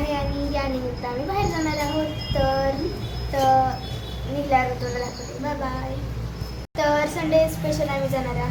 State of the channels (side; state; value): both; identical; correlation 1.00